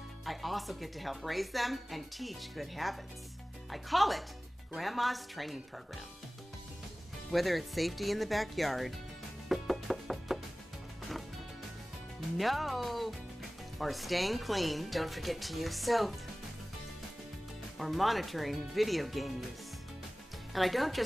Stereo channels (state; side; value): normal; both; correlation 0.98